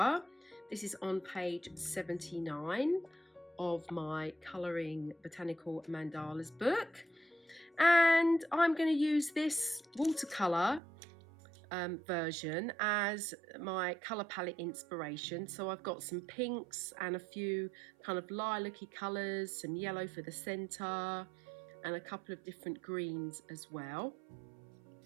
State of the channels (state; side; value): drops out; left; at 10.8 s